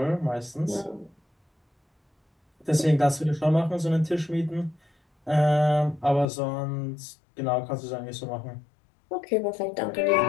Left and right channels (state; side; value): drops out; right; at 6.2 s